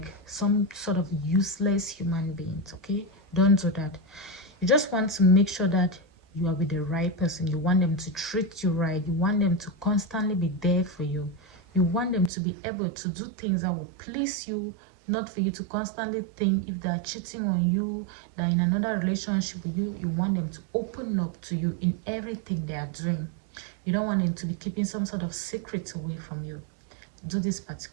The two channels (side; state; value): left; drops out; at 12.3 s